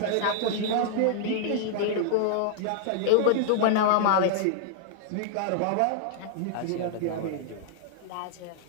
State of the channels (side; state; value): both; different; correlation -0.01